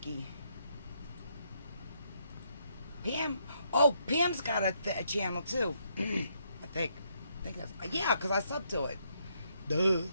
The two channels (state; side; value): inverted; both; correlation -0.75